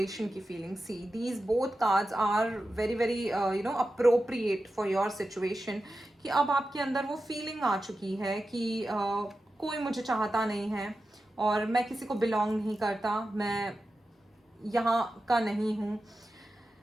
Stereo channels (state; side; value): normal; both; correlation 0.92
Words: की feeling. See these both cards are very very appropriate for your situation. कि अब आपके अंदर वो फीलिंग आ चुकी है कि कोई मुझे चाहता नहीं है और मैं किसी को बिलोंग नहीं करता, मैं यहाँ का नहीं हूँ.